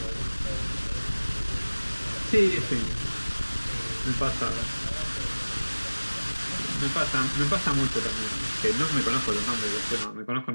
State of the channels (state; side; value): inverted; both; correlation -1.00